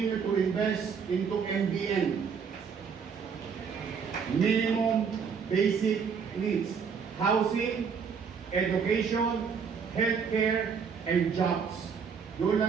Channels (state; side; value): quieter; left; 6.3 dB